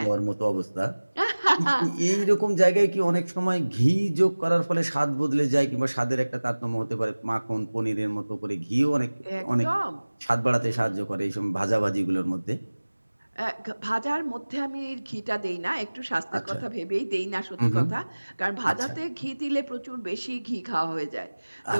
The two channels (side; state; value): both; inverted; correlation -1.00